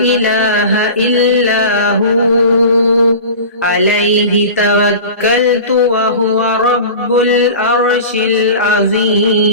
إلا هو عليه توكلت وهو رب العرش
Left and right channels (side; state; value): both; inverted; correlation -0.36